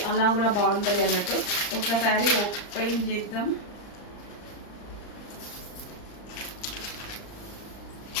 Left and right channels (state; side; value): late; right; 39 ms